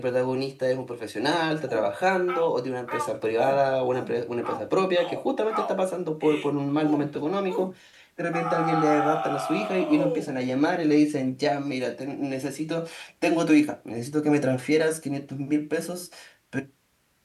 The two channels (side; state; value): both; identical; correlation 1.00